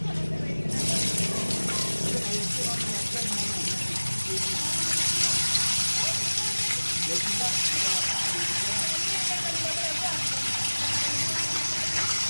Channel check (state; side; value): inverted; both; correlation -1.00